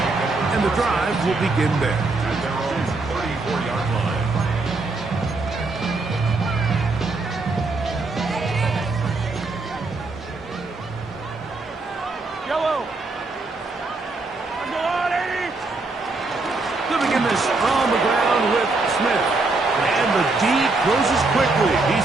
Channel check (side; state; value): left; quieter; 3.5 dB